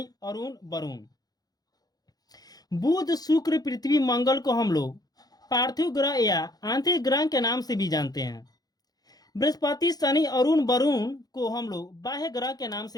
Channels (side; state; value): right; late; 0.19 ms